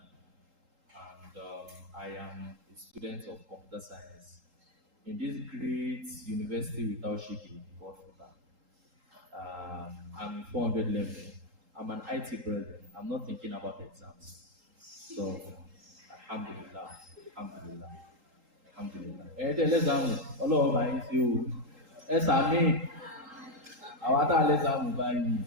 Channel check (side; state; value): left; late; 3.8 ms